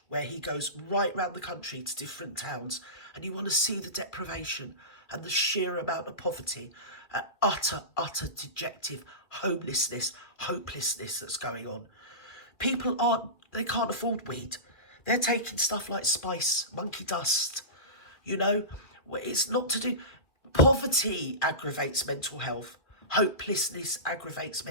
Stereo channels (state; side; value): late; right; 2.1 ms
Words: where he goes right round the country to different towns. And you want to see the deprivation and the sheer amount of poverty, utter dejective homelessness, hopelessness that's going on. People they can't afford weed. They're taking stuff like spice, monkey dust, you know. It's not to do... Poverty aggravates mental health. Hopelessness aggravates